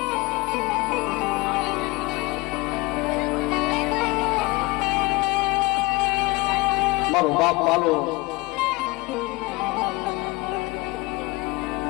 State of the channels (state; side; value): quieter; right; 22.8 dB